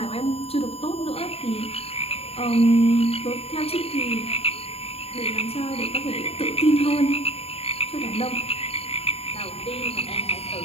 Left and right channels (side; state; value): right; late; 0.29 ms